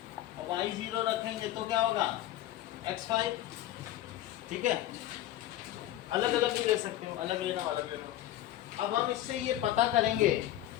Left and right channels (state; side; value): quieter; right; 13.4 dB